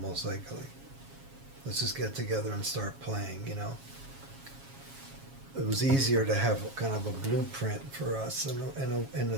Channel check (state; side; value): late; left; 7.3 ms